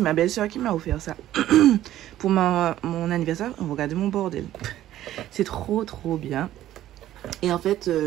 ma belle-sœur qui m'a offert ça pour mon anniversaire. Regardez mon bordel, c'est trop bien. Et en fait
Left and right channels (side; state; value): left; quieter; 13.2 dB